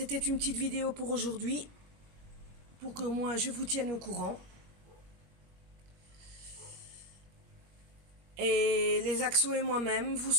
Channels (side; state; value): left; late; 21 ms